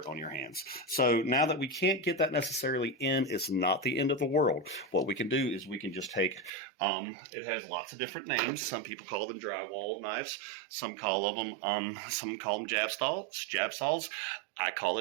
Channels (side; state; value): left; drops out; at 6.5 s